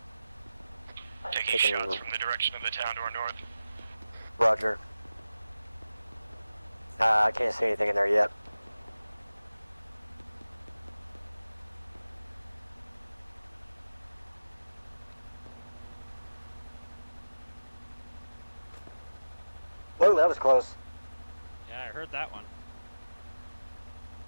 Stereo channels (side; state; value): both; inverted; correlation -0.96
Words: Taking shots from the direction of the town to our north. Roger. I can't see anything in there yet. Whoa, that was close. Yeah, I heard that one.